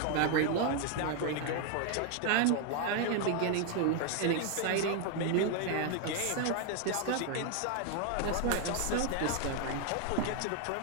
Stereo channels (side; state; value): both; different; correlation 0.01